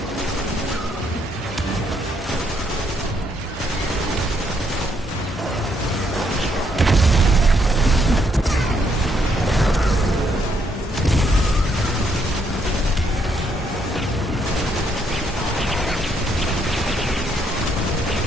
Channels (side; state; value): both; normal; correlation 0.73